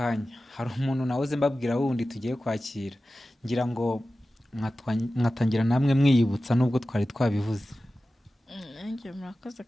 hari umuntu nahoze mbabwira wundi tugiye kwakira, ngira ngo mwatangira namwe mwiyibutsa nubwo twari twabivuze. nanjye murakoze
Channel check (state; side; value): normal; both; correlation 0.95